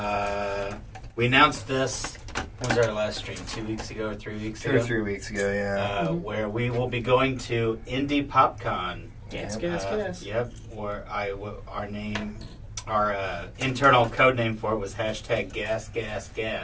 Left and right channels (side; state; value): both; identical; correlation 1.00